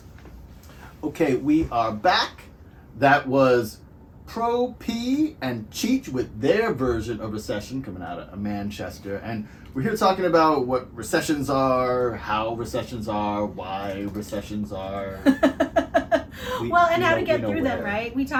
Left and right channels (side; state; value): both; identical; correlation 1.00